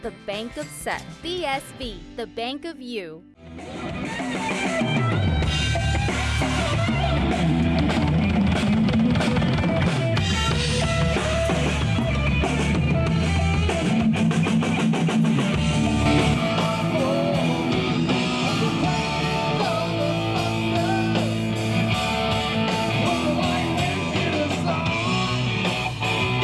Bank of Seth. BSV, the Bank of You.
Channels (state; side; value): identical; both; correlation 1.00